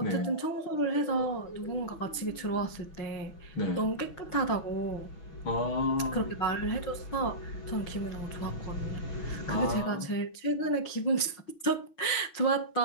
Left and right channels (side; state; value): right; late; 6.2 ms